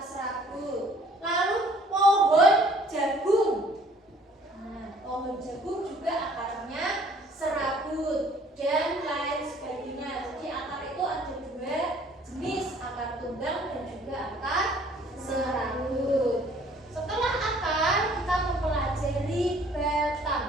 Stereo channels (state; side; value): normal; both; correlation 0.57